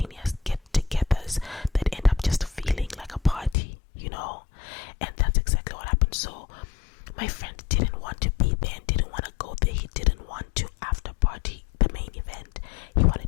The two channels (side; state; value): right; drops out; at 3.6 s